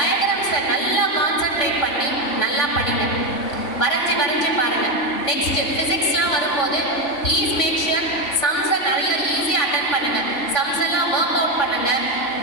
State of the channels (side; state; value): right; late; 3.5 ms